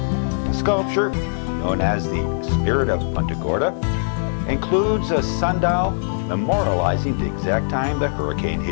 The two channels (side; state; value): right; silent; digital silence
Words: The sculpture, known as the Spirit of Punta Gorda, includes a sundial memorializing the exact time the hurricane